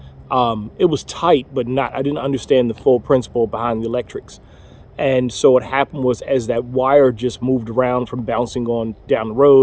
It was tight, but I didn't understand the full principle behind the electrics. And so what happened was, as that wire just moved around from bouncing on down the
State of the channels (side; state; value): both; identical; correlation 1.00